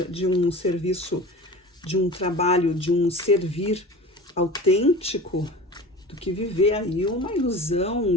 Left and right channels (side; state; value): both; normal; correlation 0.36